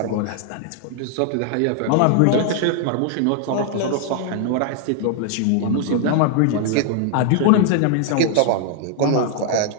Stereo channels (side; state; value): both; different; correlation 0.00